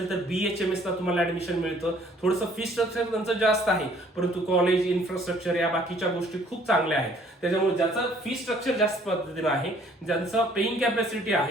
तर BHMS ला तुम्हाला ऍडमिशन मिळतं. थोडंसं फी स्ट्रक्चर त्यांचं जास्त आहे, परंतु कॉलेज इन्फ्रास्ट्रक्चर या बाकीच्या गोष्टी खूप चांगल्या आहेत. त्याच्यामुळे ज्याचं फी स्ट्रक्चर जास्त पद्धतीनं आहे, ज्यांचं पेइंग कॅपॅसिटी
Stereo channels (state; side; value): normal; both; correlation 0.59